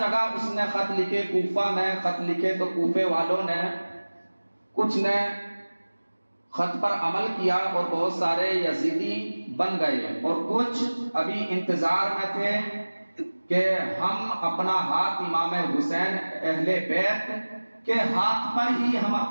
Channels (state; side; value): inverted; both; correlation -1.00